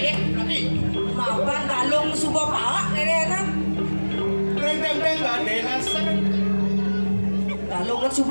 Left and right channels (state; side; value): inverted; both; correlation -1.00